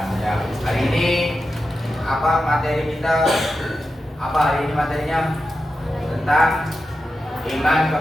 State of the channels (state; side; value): normal; both; correlation 0.90